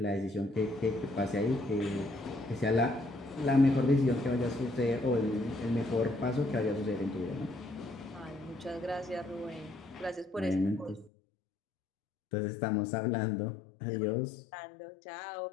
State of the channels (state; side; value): drops out; right; at 11.1 s